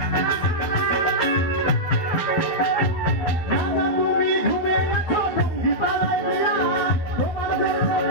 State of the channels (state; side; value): late; right; 12 ms